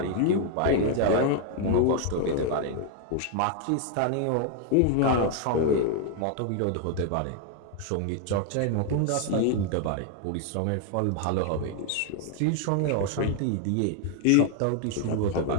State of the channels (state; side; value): different; both; correlation 0.00